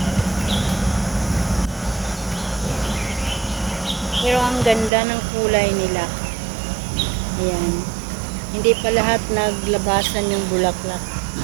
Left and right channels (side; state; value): left; drops out; at 4.9 s